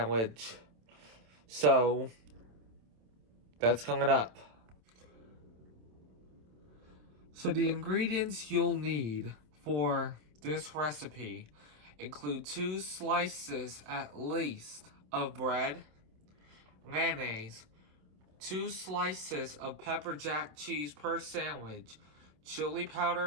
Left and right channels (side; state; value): left; late; 27 ms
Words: So, that's coming up. So the ingredients you'll need for this recipe include 2 slices at least of bread, mayonnaise, 2 slices of pepper jack cheese per sandwich, chili